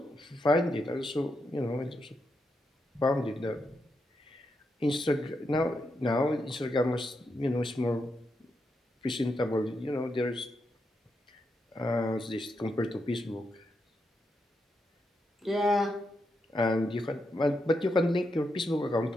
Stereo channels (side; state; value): both; normal; correlation 0.84